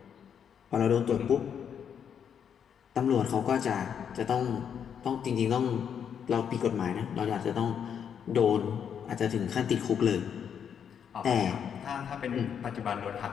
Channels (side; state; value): right; quieter; 8.0 dB